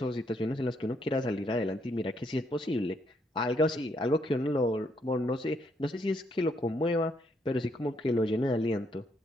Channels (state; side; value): normal; both; correlation 0.73